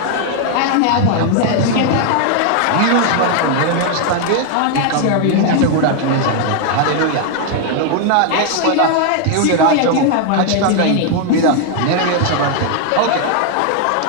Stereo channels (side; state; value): both; different; correlation 0.00